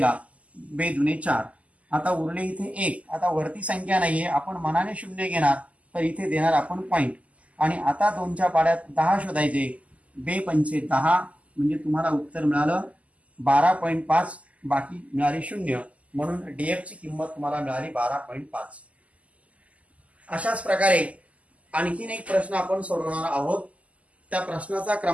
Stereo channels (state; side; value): late; left; 0.068 ms